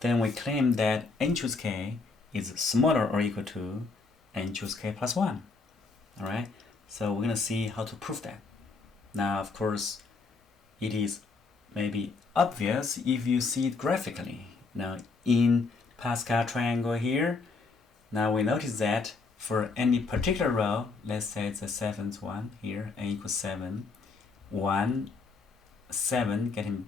then we claim that n choose k is smaller or equal to n choose k plus 1. Alright, so we're going to see how to prove that. Now of course it is maybe obvious if you see it graphically. Now in Pascal triangle here, now we notice that for any particular row, let's say it's the 7th one here, n equals 7, 1, 7 getting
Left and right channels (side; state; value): right; quieter; 4.2 dB